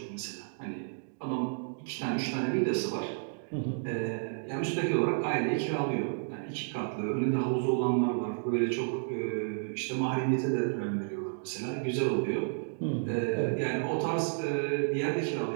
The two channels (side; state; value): left; silent; digital silence